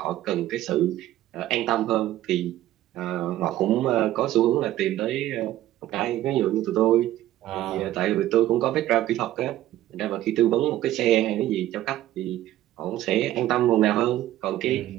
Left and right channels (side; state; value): left; quieter; 14.0 dB